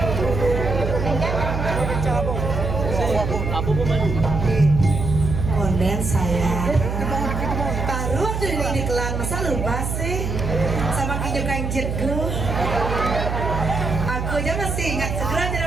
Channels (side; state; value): right; noise; hum, 3 dB below the sound